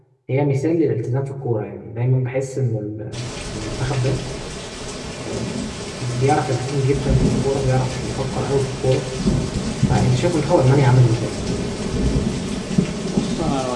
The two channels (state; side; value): identical; both; correlation 1.00